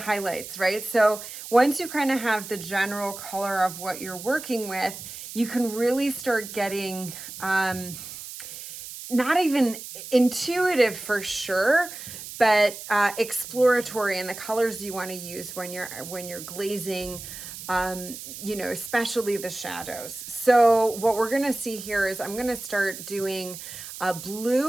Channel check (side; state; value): right; noise; hiss, 11 dB below the sound